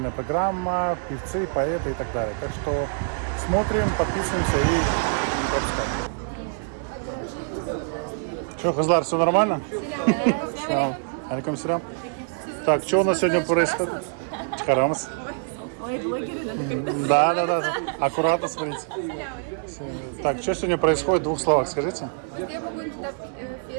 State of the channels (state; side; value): silent; left; 59 dB below the other